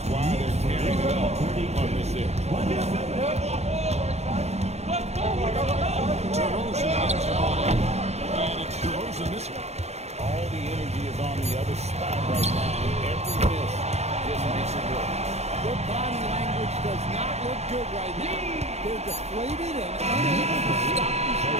why they're tearing it up on this end. DeRozan gets on. And it's DeRozan missing. All the energy is on the other spot right now, and every miss just makes it work. Their body language does not look good right now. They're deflated and unable to stop this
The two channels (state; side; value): late; left; 0.31 ms